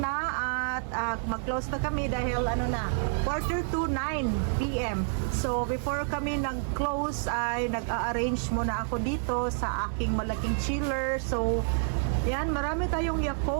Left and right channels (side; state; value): left; silent; 59 dB below the other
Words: at mag-close na kami dahil 9:45 PM. So before kami nag-close ay nag-a-arrange muna ako dito sa aking malaking chiller. So yan, marami tayong